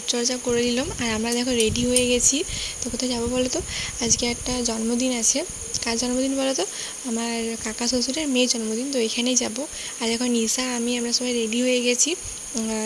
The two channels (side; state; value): both; identical; correlation 1.00